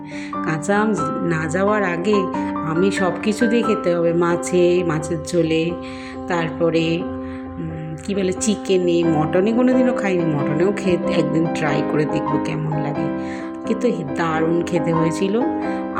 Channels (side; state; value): both; identical; correlation 1.00